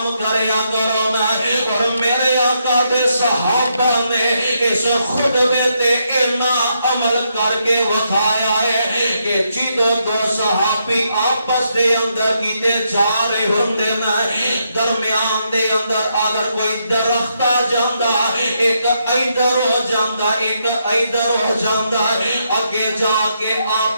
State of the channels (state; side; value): inverted; both; correlation -0.79